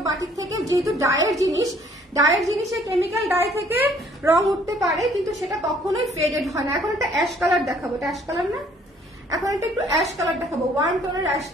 বাটিক থেকে, যেহেতু ডায়ের জিনিসে কেমিক্যাল ডাই থেকে রং উঠতে পারে, কিন্তু সেটা কখনোই ফেডেড হয় না। এখন একটা অ্যাশ কালার দেখাবো, এটা অ্যাশ কালার না, এখন একটা একটু অ্যাশ কালার দেখাবো, ওয়ার্ম টোনের অ্যাশ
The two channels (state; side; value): normal; both; correlation 0.60